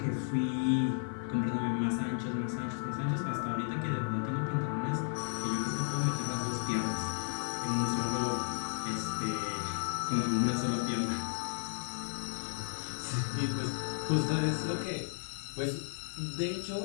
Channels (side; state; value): right; silent; 55 dB below the other